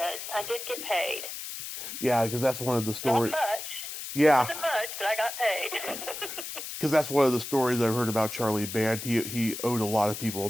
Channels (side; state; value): left; noise; hiss, 8 dB below the sound